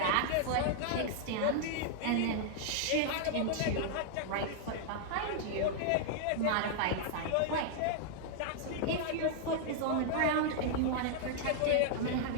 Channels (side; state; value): both; different; correlation -0.01